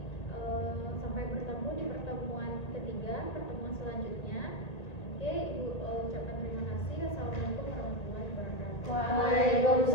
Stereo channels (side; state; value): right; late; 1.9 ms